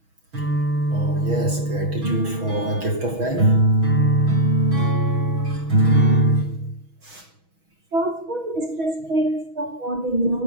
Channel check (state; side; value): late; left; 6.2 ms